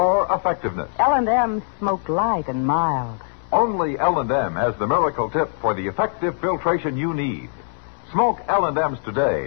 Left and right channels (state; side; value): silent; right; 64 dB below the other